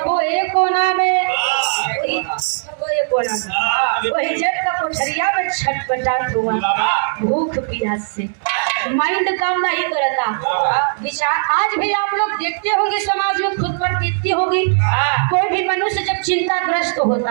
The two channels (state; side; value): silent; left; 67 dB below the other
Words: ए कोना में वही जग का कोठरिया में छटपटाट हुआ भूख प्यास से। माइंड काम नहीं करता विचार। आज भी आप लोग देखते होंगे समाज में खुद पर बीतती होगी। कोई भी मनुष्य जब चिंताग्रस्त